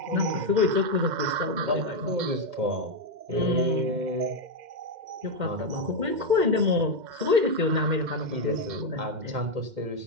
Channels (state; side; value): late; left; 2.1 ms